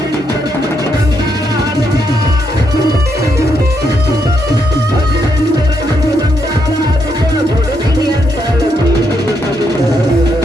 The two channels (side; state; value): both; normal; correlation 0.78